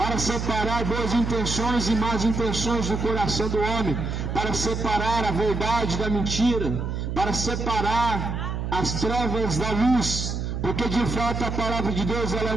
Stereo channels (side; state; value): right; noise; hum, 3 dB below the sound